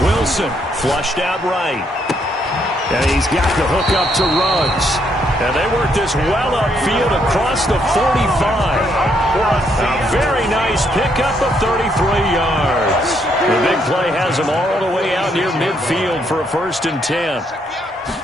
Wilson flushed out right. And he's got the hook up to Ruggs. And they work this well upfield across the 45. A very nice pickup of 33 yards. The big play has him all the way out near midfield for a 1st and 10.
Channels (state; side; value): normal; both; correlation 0.73